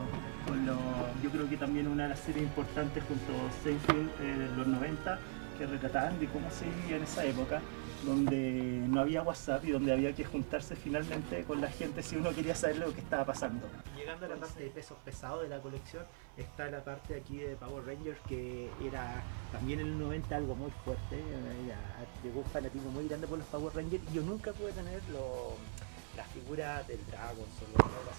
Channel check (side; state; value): left; silent; 51 dB below the other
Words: creo que también una de las series importantes junto a Seinfeld en los 90, que retrataban de cómo se vivía en esa época, donde no había WhatsApp y donde había que juntarse finalmente con la gente si uno quería saber lo que estaba pasando. Llegando a la parte de pesos pesados de la colección, está la parte aquí de Power Rangers, que era también en los 90 algo muy fuerte. Llegó un fanatismo muy grande por los Power Rangers, y yo nunca pude tener las figuras del Dragon o el